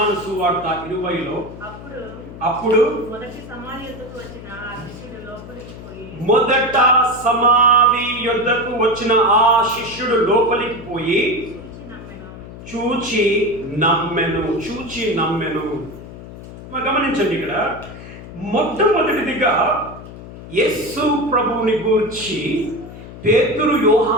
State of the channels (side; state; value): left; noise; hum, 14 dB below the sound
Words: సువార్త 20లో అప్పుడు మొదట సమాధి యొద్దకు వచ్చిన ఆ శిష్యుడు లోపలికి పోయి చూచి నమ్మెను. గమనించండి, ఇక్కడ మొట్టమొదటిదిగా యేసు ప్రభువుని గూర్చి పేతురు